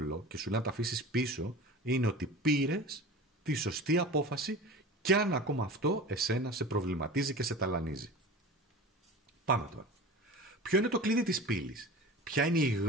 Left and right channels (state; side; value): normal; both; correlation 0.35